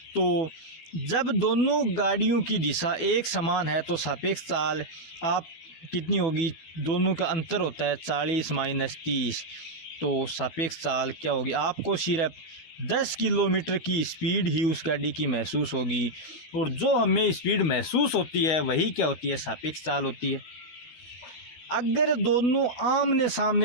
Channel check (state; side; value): late; right; 12 ms